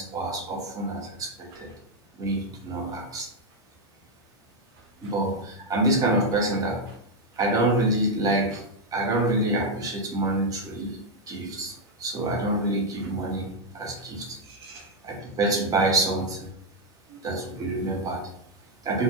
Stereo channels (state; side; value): normal; both; correlation 0.01